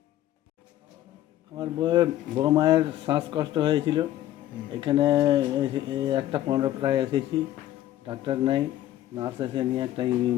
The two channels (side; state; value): right; quieter; 13.5 dB